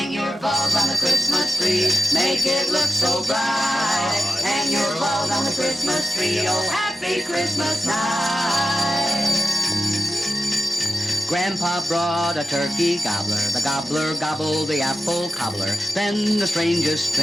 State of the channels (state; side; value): normal; both; correlation 0.93